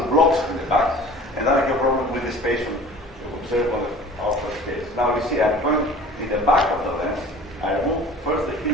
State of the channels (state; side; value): normal; both; correlation 0.44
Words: blocks in the back, and then I have a problem with the space you observe on the outer space. Now you see, I'm going in the back of the lens. I remove first the